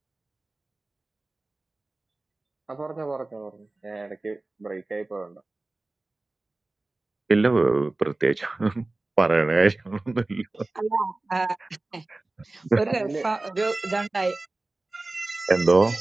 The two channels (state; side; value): quieter; left; 3.0 dB